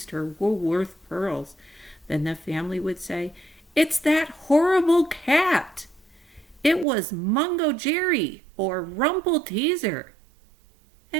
her Woolworth pearls, then the family would say, "It's that horrible cat! It was Mungojerrie or Rumpelteazer."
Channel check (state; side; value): drops out; left; at 6.9 s